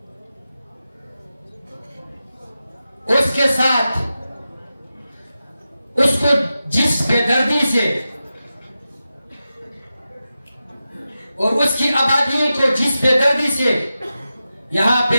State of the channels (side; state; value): both; inverted; correlation -0.92